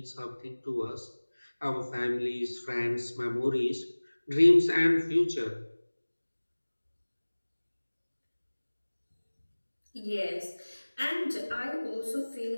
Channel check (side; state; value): both; inverted; correlation -1.00